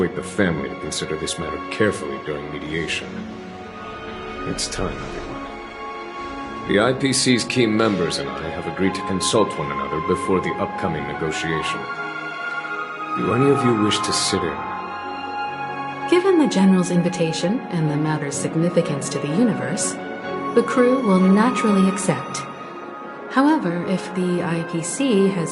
the family to consider this matter carefully during mediation. It's time, everyone. The IPC's key members and I have agreed to consult one another before the upcoming negotiation. Do any of you wish to sit in? Given the General's invitation and the matter's significance to the universe, the crew will naturally accept. However, if the IPC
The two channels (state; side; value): identical; both; correlation 1.00